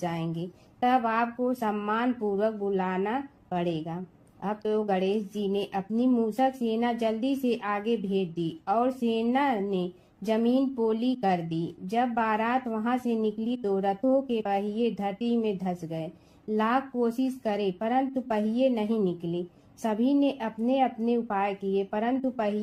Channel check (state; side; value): identical; both; correlation 1.00